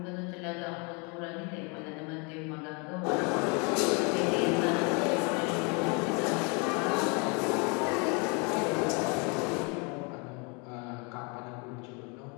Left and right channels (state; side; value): quieter; right; 32.5 dB